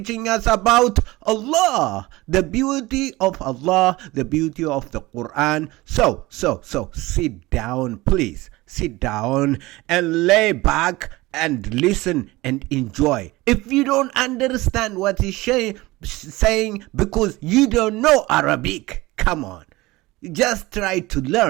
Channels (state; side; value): quieter; left; 20.4 dB